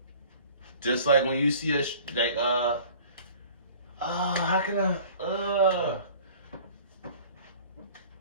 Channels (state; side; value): inverted; both; correlation -0.47